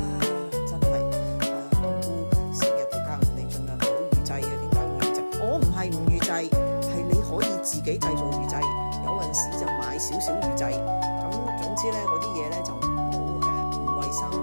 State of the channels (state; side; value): inverted; both; correlation -1.00